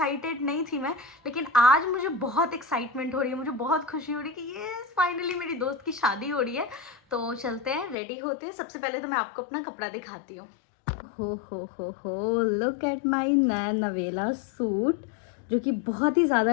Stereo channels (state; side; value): drops out; right; at 8.0 s